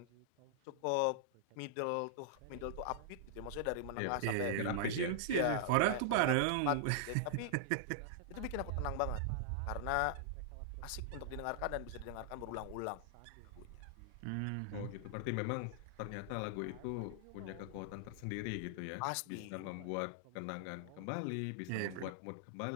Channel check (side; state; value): both; different; correlation -0.01